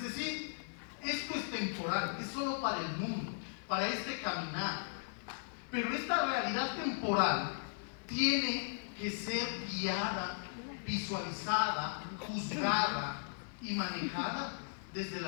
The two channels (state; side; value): silent; right; 53 dB below the other